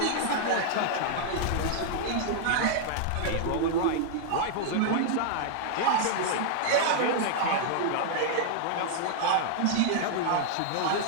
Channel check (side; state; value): both; different; correlation -0.01